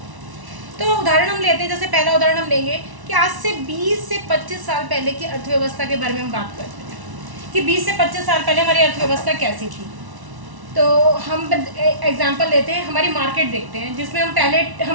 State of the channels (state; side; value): late; left; 1.1 ms